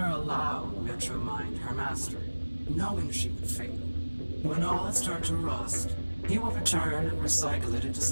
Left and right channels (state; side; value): inverted; both; correlation -1.00